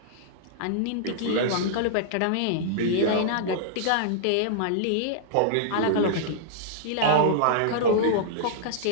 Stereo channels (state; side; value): different; both; correlation -0.01